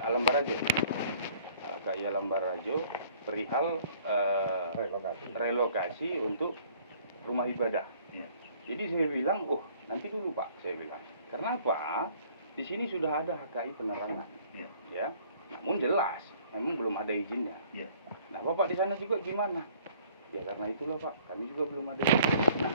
Alam Barajo. HKI Alam Barajo perihal relokasi untuk rumah ibadah. Jadi saya bilang, oh nanti dulu Pak, saya bilang. Karena apa? Di sini sudah ada HKI Penerangan. Ya. Namun jelas, memang belum ada izinnya. Nah Bapak di sana juga gimana? Ya karena itulah Pak, kami juga belum ada izin. Nah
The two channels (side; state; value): both; inverted; correlation -0.57